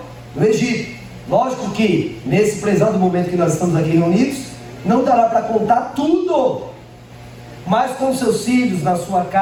no Egito. Lógico que, nesse prezado momento que nós estamos aqui reunidos, não dará para contar tudo. Mas com seus filhos, na sua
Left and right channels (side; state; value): both; identical; correlation 1.00